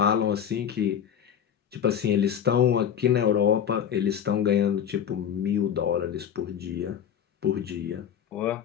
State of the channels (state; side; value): quieter; right; 8.7 dB